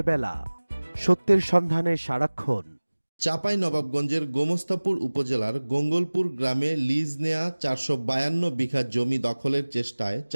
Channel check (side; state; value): both; inverted; correlation -1.00